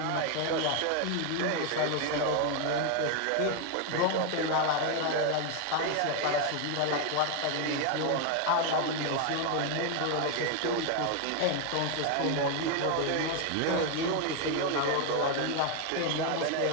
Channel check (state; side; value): different; both; correlation 0.01